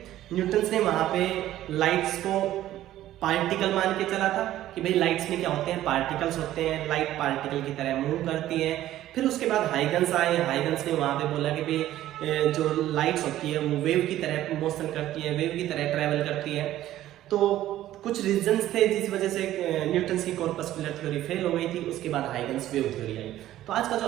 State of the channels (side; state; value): left; quieter; 13.6 dB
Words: न्यूटन्स ने वहां पे लाइट्स को पार्टिकल मान के चला था कि भाई लाइट्स में क्या होते हैं, पार्टिकल्स होते हैं, लाइट पार्टिकल की तरह मूव करती है। फिर उसके बाद हाइगन्स आए, हाइगन्स ने वहां पे बोला कि भाई जो लाइट्स होती है वो वेव की तरह मोशन करती है, वेव की तरह ट्रेवल करती है। तो कुछ रीजंस थे जिस वजह से न्यूटन्स की कॉर्पस्कुलर थ्योरी फेल हो गई थी। उसके बाद हाइगन्स वेव थ्योरी आई। तो आज का जो